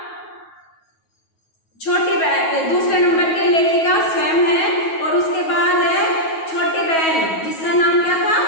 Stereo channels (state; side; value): late; right; 9.3 ms